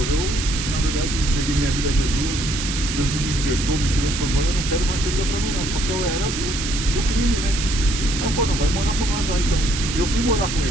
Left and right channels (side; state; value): right; noise; hiss, 5 dB below the sound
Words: eu na verdade entreguei minha vida a Jesus, Jesus me libertou, me transformou, eu não quero mais essa vida pra mim não, só que eu era do crime, né? Aí ele falou, não, vai morar com nós lá então. Eu fui morar com